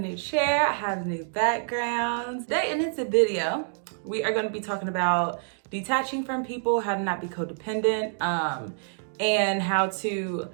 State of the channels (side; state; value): left; silent; digital silence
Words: chair, I have new backgrounds. Today in this video, we are going to be talking about detaching from people, how to not be codependent, and how to,